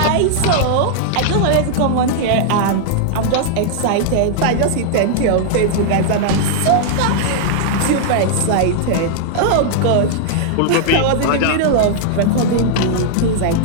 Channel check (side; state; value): both; different; correlation -0.01